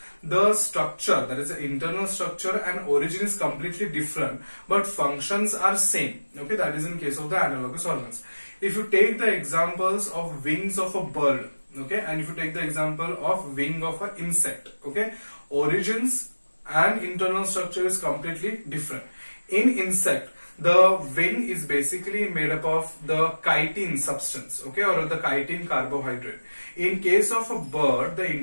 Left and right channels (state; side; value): inverted; both; correlation -1.00